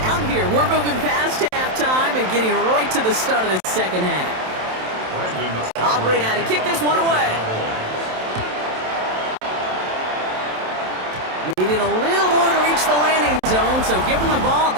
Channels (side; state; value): left; late; 27 ms